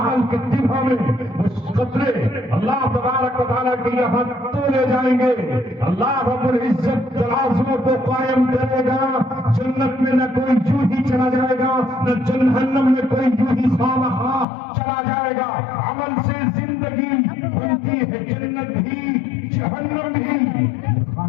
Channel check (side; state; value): right; drops out; at 14.5 s